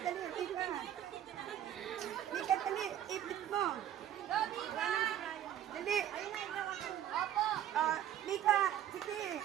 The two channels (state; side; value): quieter; left; 11.0 dB